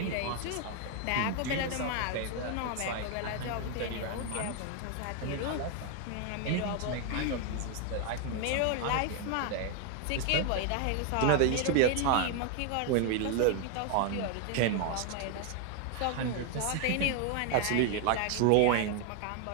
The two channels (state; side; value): different; both; correlation 0.00